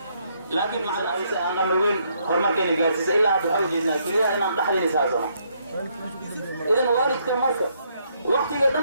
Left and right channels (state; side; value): inverted; both; correlation -0.72